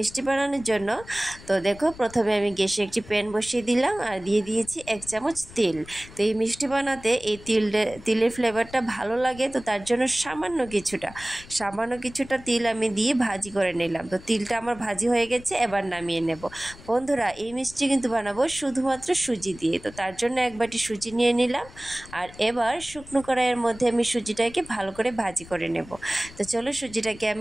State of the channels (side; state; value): left; noise; rumble, 19 dB below the sound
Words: बानानोर जन्य तो देखो प्रथमे आमी ग्यासे एकटी पैन बसिए दिलाम और दिए दिएछि 1 चामच तेल। तो एई मिष्टि बानाते एई तेलेर फ्लेभारटा भालो लागे, तो तार जন্য सामान्य কিছুটা তিল আমি দিয়ে ভাজি করে নিলাম। তো তিলটা আমার ভাজি হয়ে গেছে, এবার নামিয়ে নেব। বন্ধুরা এই মিষ্টি কিন্তু বানাবো শুধুমাত্র সুজি দিয়ে। তো তার জন্য এক বাটি সুজি নিয়ে নিলাম আর এবার শুকনো কড়াইয়ের মধ্যে আমি সুজিটাকে ভালো করে ভাজি করে নেব। তো চলো সুজিটাকে